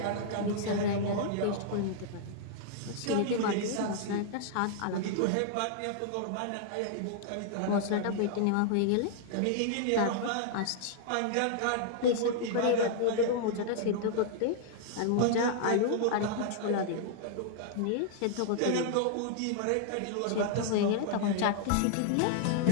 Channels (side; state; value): both; different; correlation -0.01